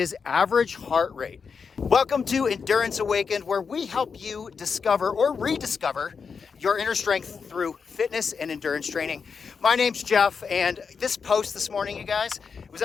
average heart rate. Welcome to Endurance Awakened, where we help you discover or rediscover your inner strength through fitness and endurance training. My name's Jeff, and this post this morning, you guys, it was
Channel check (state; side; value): quieter; right; 5.7 dB